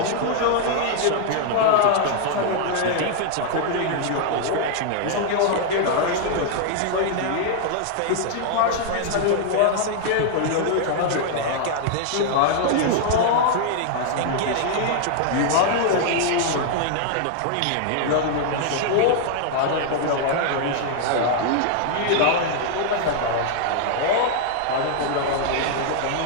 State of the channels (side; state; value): both; different; correlation 0.00